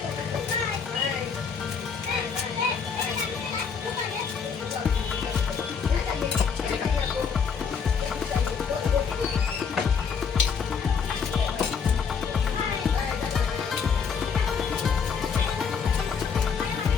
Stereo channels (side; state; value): right; quieter; 6.2 dB